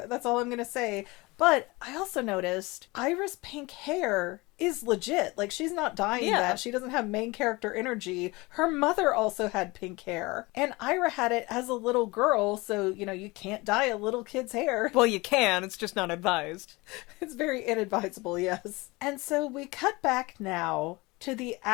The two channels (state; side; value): quieter; right; 23.6 dB